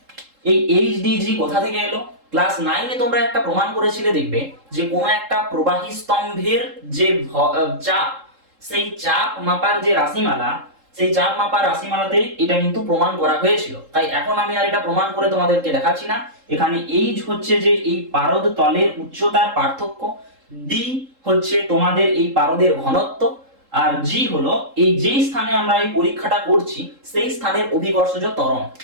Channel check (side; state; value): left; late; 3.7 ms